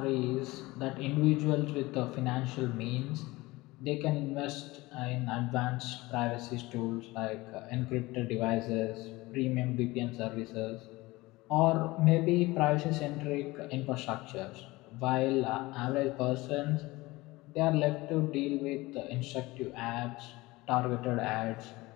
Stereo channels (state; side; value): quieter; right; 20.8 dB